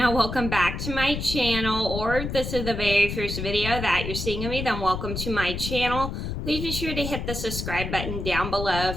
Welcome back to my channel, or if this is the very first video that you're seeing of me, then welcome to my channel. Please be sure to hit the subscribe button down below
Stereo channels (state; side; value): noise; left; rumble, 5 dB below the sound